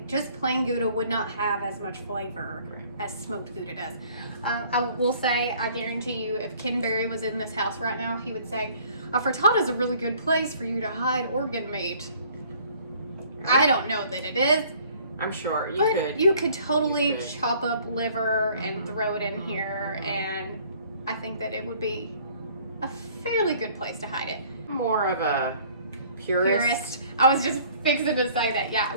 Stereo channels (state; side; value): inverted; both; correlation -0.56